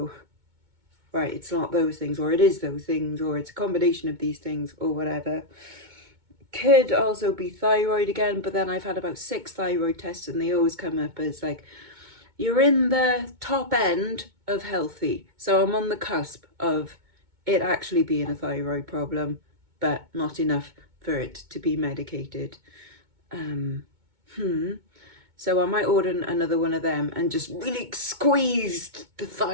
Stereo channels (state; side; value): late; left; 2.2 ms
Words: right, it's not those things, or it is those things, or it's a combination of these things, or whatever. Could also be thyroid again, but then I've had about 6 thyroid tests and they always come up as like, you're in the top end of healthy. So I'm on the cusp of it actually being a thyroid problem, but not enough for it to be medicated. So I might order another one of them and just really squeeze the